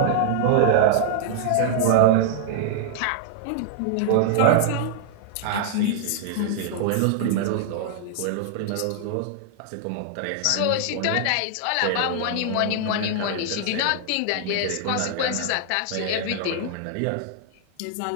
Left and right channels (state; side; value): different; both; correlation -0.01